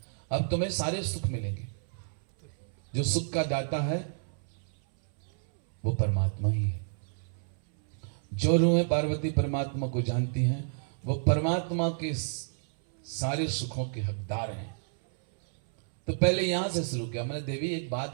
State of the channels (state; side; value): silent; left; 58 dB below the other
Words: अब तुम्हें सारे सुख मिलेंगे। जो सुख का दाता है वो परमात्मा ही है। जो रूहें पार्वती परमात्मा को जानती हैं, वो परमात्मा के सारे सुखों के हकदार हैं। तो पहले यहां से शुरू किया मैंने। देवी एक